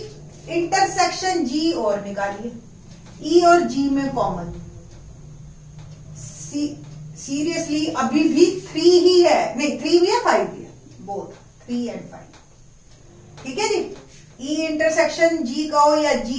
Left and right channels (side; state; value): both; identical; correlation 1.00